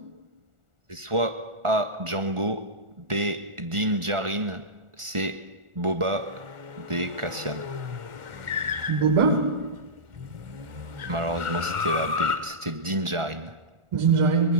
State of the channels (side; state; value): left; late; 1.4 ms